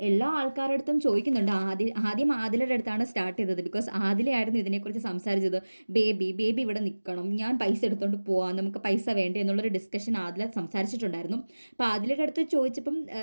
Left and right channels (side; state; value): both; inverted; correlation -1.00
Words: എല്ലാ ആൾക്കാരുടെ അടുത്തും ചോദിക്കുന്നുണ്ട്. ആദ്യം ആദിലയുടെ അടുത്താണ് സ്റ്റാർട്ട് ചെയ്തത്. ബിക്കോസ് ആദിലയായിരുന്നു ഇതിനെക്കുറിച്ച് സംസാരിച്ചത്. ബേബി ഇവിടെ നിൽക്കണം, ഞാൻ പൈസ എടുത്തുകൊണ്ട് പോവാം, നമുക്ക് പൈസ വേണ്ടേ എന്നുള്ളൊരു ഡിസ്കഷൻ ആദില സംസാരിച്ചിട്ടുണ്ടായിരുന്നു. അപ്പോൾ ആദിലയുടെ അടുത്ത് ചോദിച്ചപ്പം